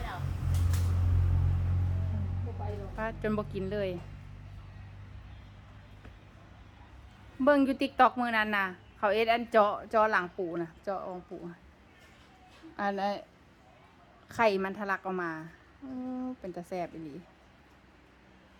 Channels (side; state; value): both; identical; correlation 1.00